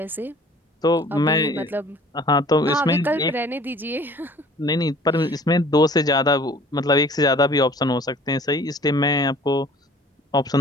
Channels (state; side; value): normal; both; correlation 0.51